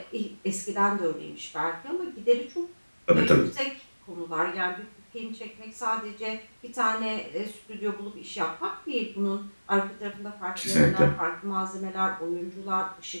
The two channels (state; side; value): inverted; both; correlation -1.00